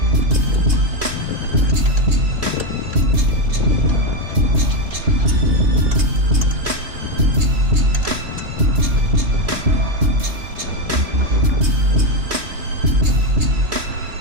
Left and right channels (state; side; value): late; left; 3.1 ms